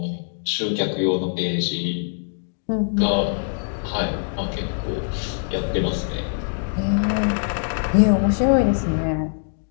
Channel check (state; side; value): silent; right; digital silence